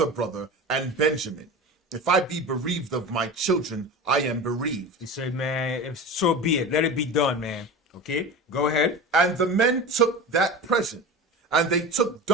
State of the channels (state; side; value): normal; both; correlation 0.30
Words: brother and Benjamin. If I be bereaved of my children, I am bereaved. He said, man, so be it. Let it be done, man. Okay, go ahead. And the men took that present, and they took